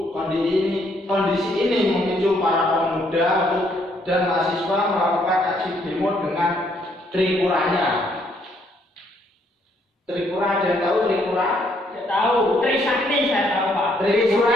Kondisi ini memicu para pemuda dan mahasiswa melakukan aksi demo dengan Tripuranya. Tripura, ada yang tahu Tripura? Saya tahu. Trisakti saya tahu Pak. Tripura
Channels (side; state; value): both; normal; correlation 0.69